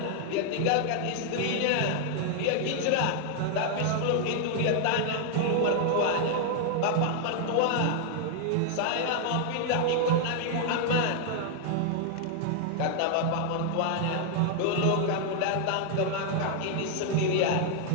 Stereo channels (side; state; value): both; different; correlation 0.00